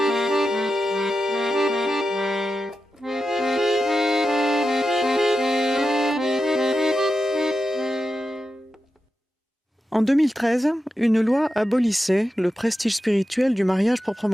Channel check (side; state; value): both; normal; correlation 0.90